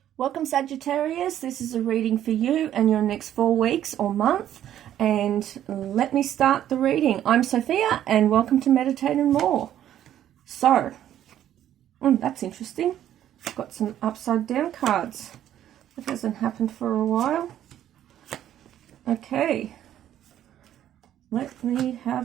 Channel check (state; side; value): quieter; left; 11.3 dB